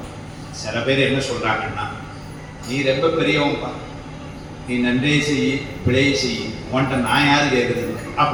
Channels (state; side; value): identical; both; correlation 1.00